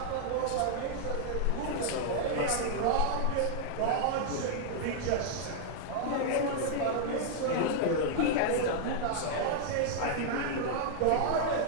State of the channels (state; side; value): different; both; correlation -0.01